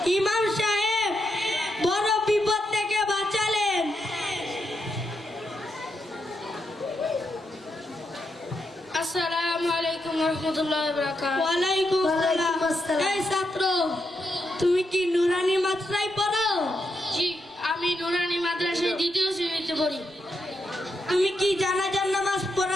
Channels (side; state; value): both; normal; correlation 0.83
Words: ইমাম সাহেব বড় বিপদ থেকে বাঁচালেন। আসসালামু আলাইকুম রহমতুল্লাহ বারাকাতুহু। ওয়ালাইকুম ওয়ালাইকুম আসসালাম। আসসালাম। এই ছাত্র, তুমি কি নুরানি মাদ্রাসায় পড়ো? জি, আমি নুরানি মাদ্রাসায় 2য় শ্রেণীতে পড়ি। তুমি কি জানাজার নামাজ